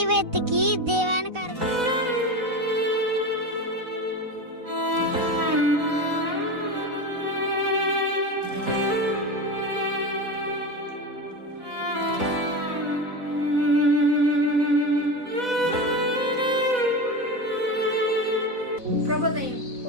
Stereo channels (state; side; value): late; left; 4.0 ms